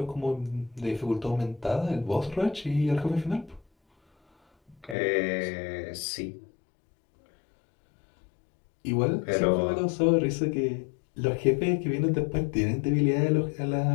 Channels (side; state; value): right; drops out; at 5.0 s